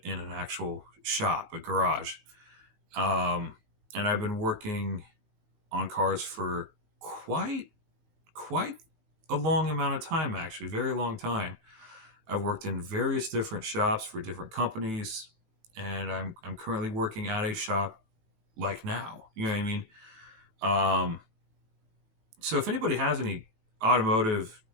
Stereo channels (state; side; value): late; left; 18 ms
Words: an actual shop, a garage. Um, and I've been working on cars for quite a long amount of time, actually, very long time. I've worked in various different shops for different companies, and I'm currently working at a shop like now. You know what I mean? Um, so if anybody has any automotive